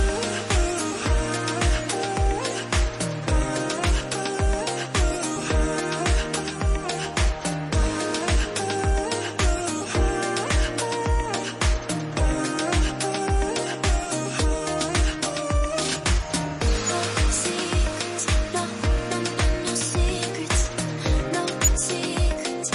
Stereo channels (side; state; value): both; identical; correlation 1.00